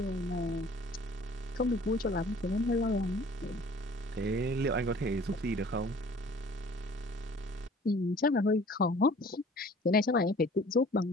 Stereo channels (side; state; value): both; normal; correlation 0.51